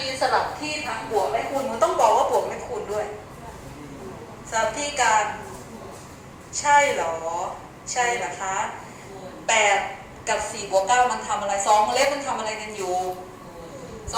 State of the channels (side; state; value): both; identical; correlation 1.00